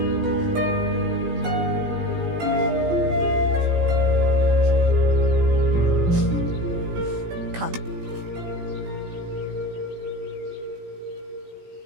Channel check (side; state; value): left; late; 17 ms